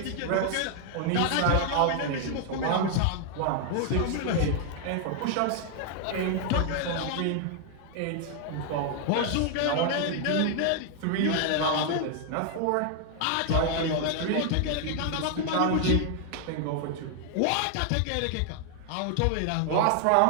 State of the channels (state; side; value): different; both; correlation 0.00